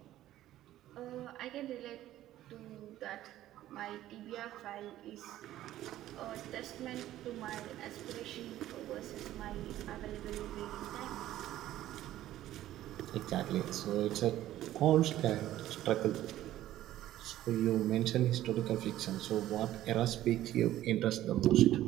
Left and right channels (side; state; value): left; quieter; 13.7 dB